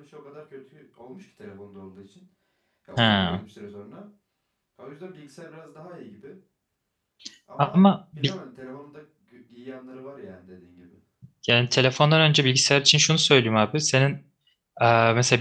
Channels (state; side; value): identical; both; correlation 1.00